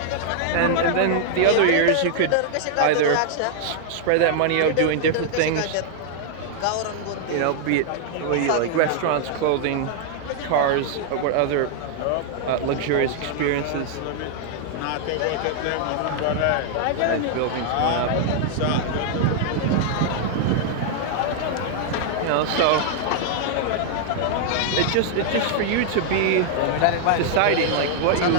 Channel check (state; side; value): different; both; correlation -0.01